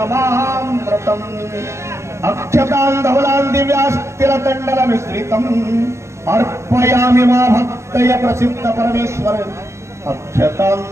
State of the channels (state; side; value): late; left; 0.13 ms